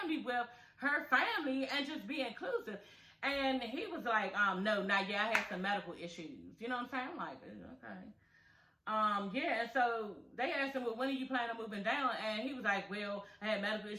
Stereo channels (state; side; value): identical; both; correlation 1.00